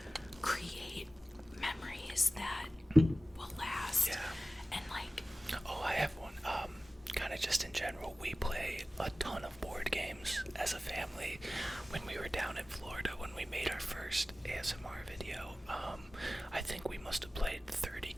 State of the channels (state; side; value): normal; both; correlation 0.96